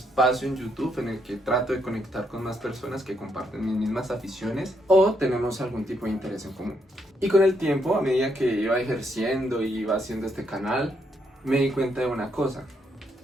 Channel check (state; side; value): normal; both; correlation 0.76